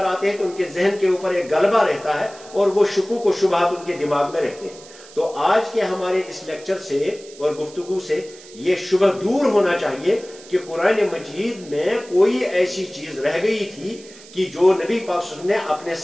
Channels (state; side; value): noise; right; hiss, 20 dB below the sound